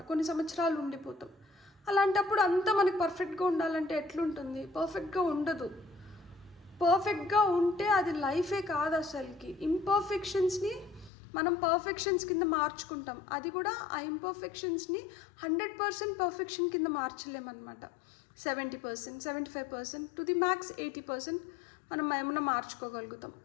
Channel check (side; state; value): right; drops out; at 11.1 s